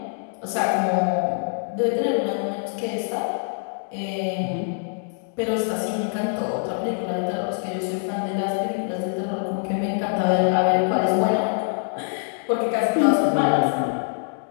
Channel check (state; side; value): silent; right; 58 dB below the other